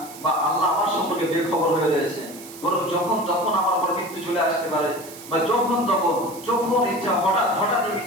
বা আল্লাহ আমার সম্পর্কে বেখবর হয়ে রয়েছে। বরং যখন আমার উপর মৃত্যু চলে আসতে পারে বা যখন ইচ্ছা হঠাৎই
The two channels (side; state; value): right; noise; hiss, 16 dB below the sound